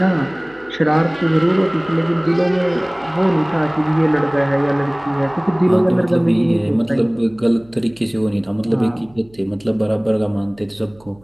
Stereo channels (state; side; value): noise; right; hum, 28 dB below the sound